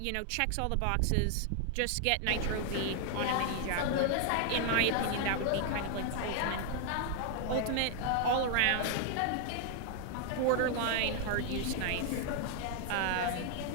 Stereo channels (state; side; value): different; both; correlation 0.00